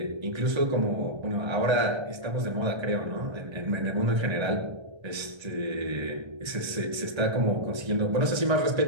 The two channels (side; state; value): left; late; 1.3 ms